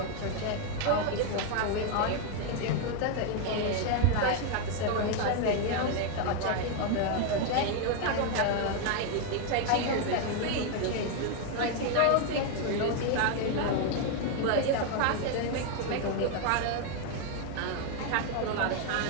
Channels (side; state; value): both; different; correlation 0.01